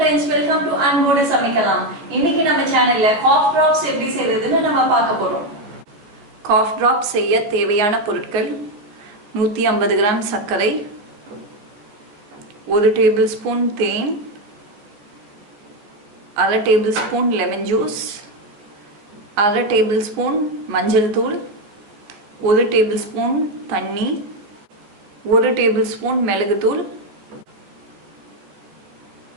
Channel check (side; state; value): left; late; 14 ms